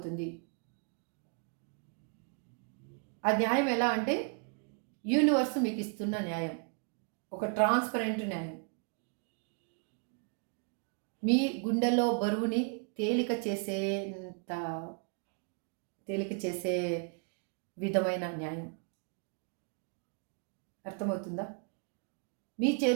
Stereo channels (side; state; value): left; quieter; 39.4 dB